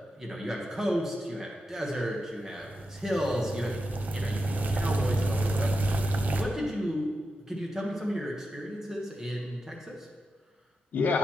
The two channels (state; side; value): normal; both; correlation 0.88